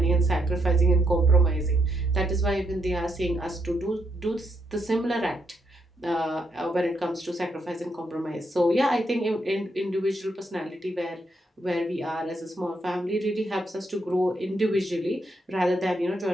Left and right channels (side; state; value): both; normal; correlation 0.77